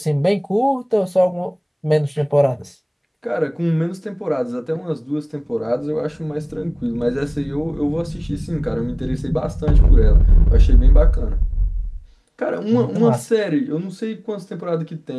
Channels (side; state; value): both; identical; correlation 1.00